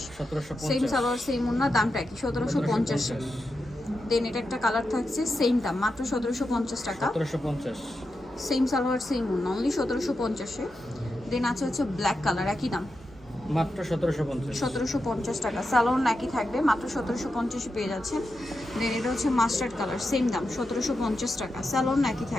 1750। সেম সালোয়ার সেম ওনা, দামটা একই, 1750। দেন এটা একটা কালার থাকছে, সেম দাম, মাত্র 1750 টাকা। 1750। সেম সালোয়ার সেম ওনা, অনলি 1750-এ। দেন আছে হচ্ছে ব্ল্যাক কালার, একই দাম, মাত্র 1750। 1750 টাকা। সালোয়ার একই থাকবে, মাত্র 1750-এ পেয়ে যাচ্ছেন। দেন এটা হচ্ছে মাস্টার্ড কালার, সেম দাম, 1750 টাকা। সালোয়ার একই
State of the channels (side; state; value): both; normal; correlation 0.88